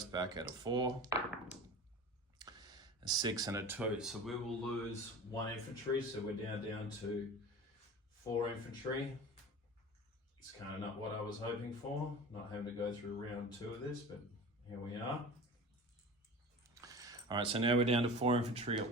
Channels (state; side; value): normal; both; correlation 0.35